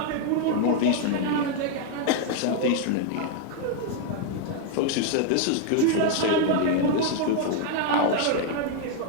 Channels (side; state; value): both; different; correlation 0.00